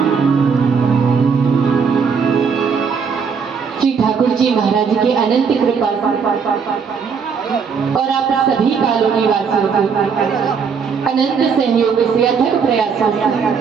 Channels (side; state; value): left; quieter; 6.0 dB